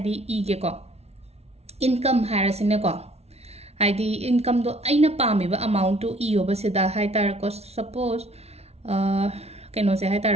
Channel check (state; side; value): late; left; 0.31 ms